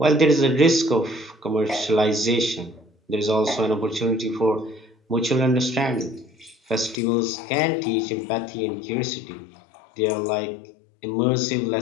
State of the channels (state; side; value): drops out; right; at 7.0 s